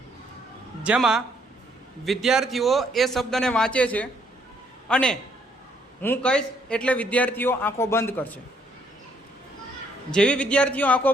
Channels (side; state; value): both; normal; correlation 0.69